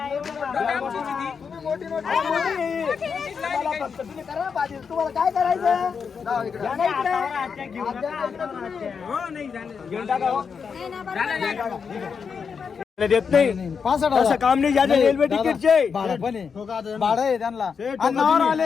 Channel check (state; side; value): quieter; right; 6.1 dB